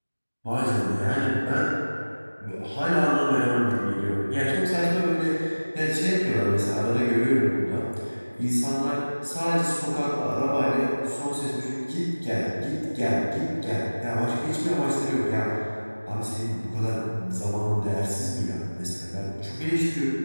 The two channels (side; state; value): both; inverted; correlation -1.00